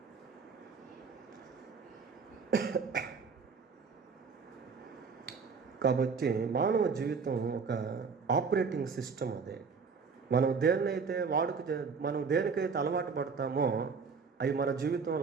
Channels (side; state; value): left; quieter; 5.4 dB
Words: కాబట్టి మానవ జీవితం ఒక ఆపరేటింగ్ సిస్టమ్. అదే మనం దేనికైతే అలవాటు పడతామో అవి మన